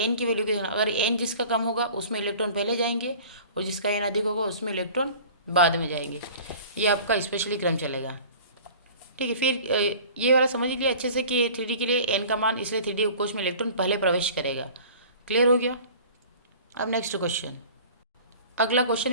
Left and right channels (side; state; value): both; inverted; correlation -0.44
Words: की वैल्यू को देखना। अगर एन जिसका कम होगा उसमें इलेक्ट्रॉन पहले जाएंगे और जिसका एन अधिक होगा उसमें इलेक्ट्रॉन बाद में जाएंगे। ये आपका स्पेशली क्रम चलेगा। ठीक है, फिर ये वाला समझ लीजिए अच्छे से कि 3D के लिए एन का मान, इसलिए 3D उपकोष में इलेक्ट्रॉन पहले प्रवेश करेगा। क्लियर हो गया। अब नेक्स्ट क्वेश्चन, अगला क्वेश्चन